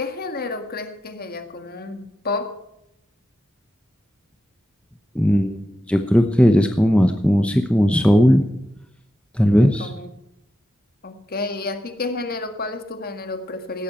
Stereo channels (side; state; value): both; normal; correlation 0.89